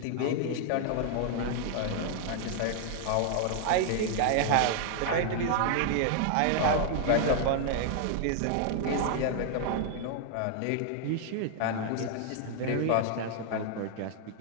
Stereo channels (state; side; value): different; both; correlation 0.00